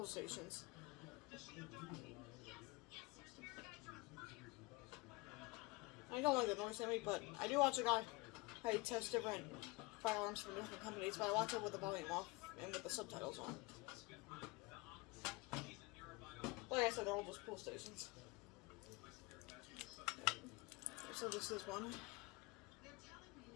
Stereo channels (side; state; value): right; quieter; 24.1 dB